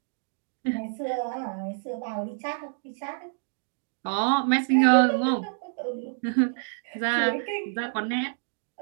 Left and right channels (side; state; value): left; silent; digital silence